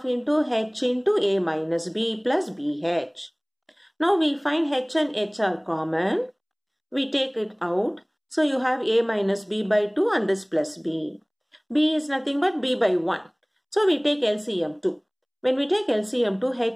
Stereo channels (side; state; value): both; identical; correlation 1.00